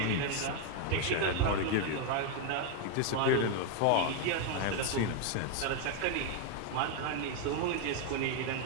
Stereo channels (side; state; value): both; different; correlation 0.01